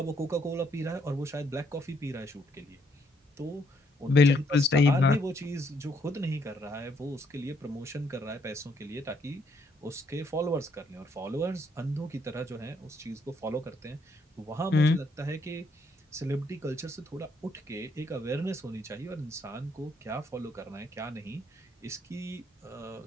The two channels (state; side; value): normal; both; correlation 0.71